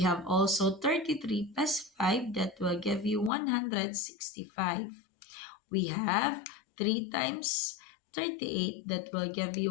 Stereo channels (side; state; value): right; drops out; at 3.3 s